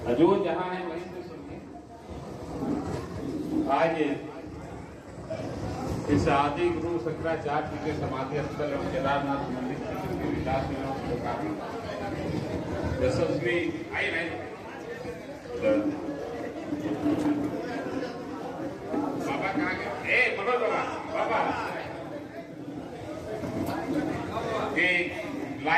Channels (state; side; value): identical; both; correlation 1.00